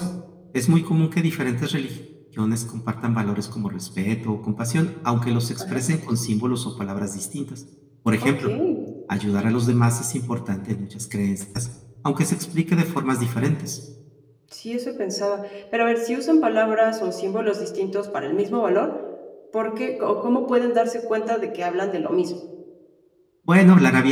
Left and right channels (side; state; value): both; identical; correlation 1.00